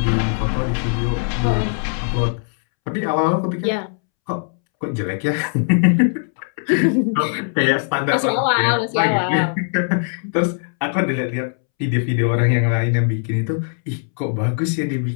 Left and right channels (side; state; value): right; silent; 66 dB below the other